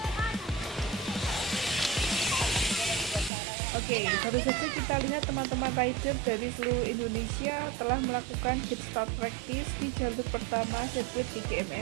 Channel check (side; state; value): left; drops out; at 3.3 s